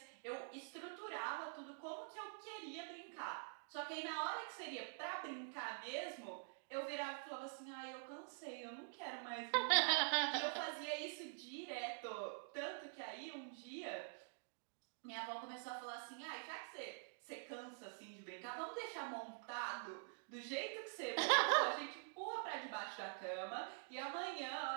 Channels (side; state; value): left; silent; digital silence